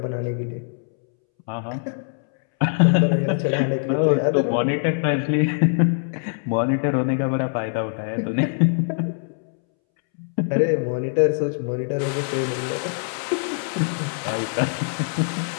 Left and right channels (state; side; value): silent; right; 64 dB below the other